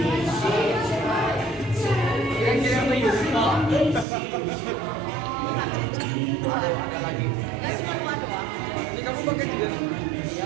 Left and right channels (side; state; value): left; drops out; at 4.0 s